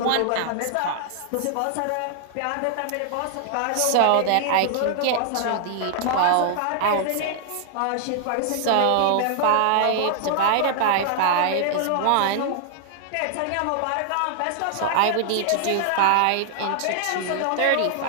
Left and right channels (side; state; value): both; different; correlation 0.00